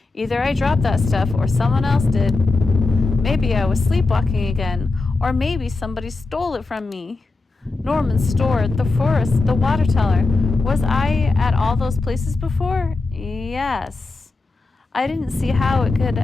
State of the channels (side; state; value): right; quieter; 3.5 dB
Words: Either I dropped that stuff or someone else did. Maybe I was sleepwalking again, or maybe somebody stole it from me. Norman's store, the forest, the water tower. Was I at all those places before? Yes. I didn't see how it could